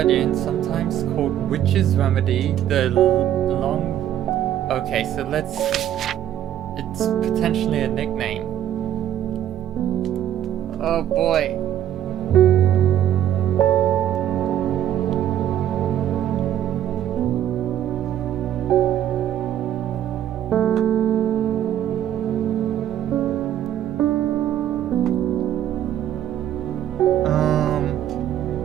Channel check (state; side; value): quieter; left; 11.2 dB